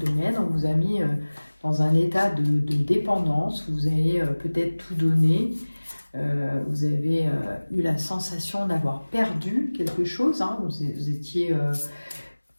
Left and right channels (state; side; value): inverted; both; correlation -1.00